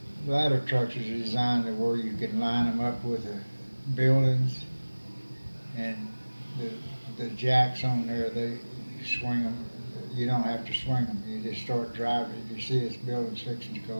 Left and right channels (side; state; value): both; inverted; correlation -1.00